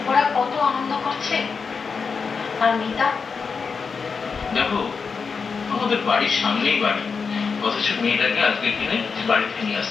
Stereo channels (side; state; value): right; quieter; 5.4 dB